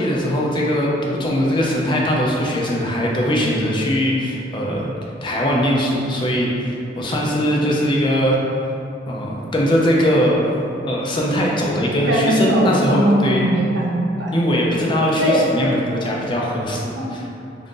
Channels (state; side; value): normal; both; correlation 0.58